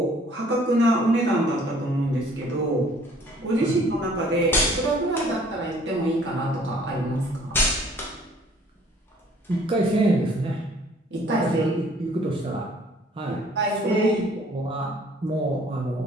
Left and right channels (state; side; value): normal; both; correlation 0.57